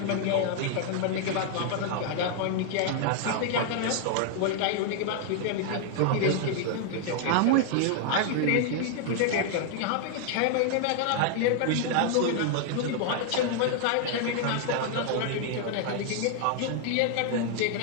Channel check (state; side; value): different; both; correlation 0.00